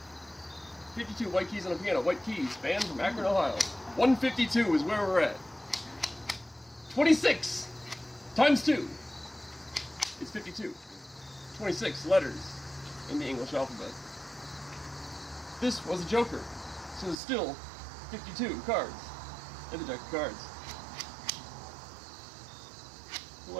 52 white keys on a piano. White keys, band from Akron, Ohio. 152 is where we're at. 26 times 2 is 52. 26 letters in the English alphabet. This was a joker, so there's still 52 cards in the deck of cards. Who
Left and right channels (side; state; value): left; drops out; at 17.2 s